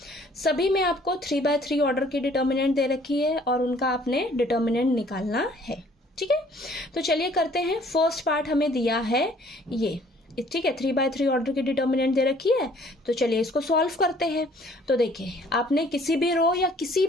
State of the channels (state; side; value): normal; both; correlation 0.58